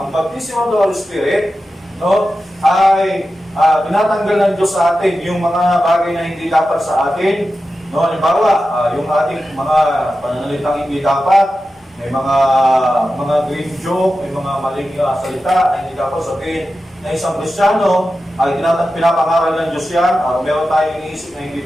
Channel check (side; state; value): both; normal; correlation 0.92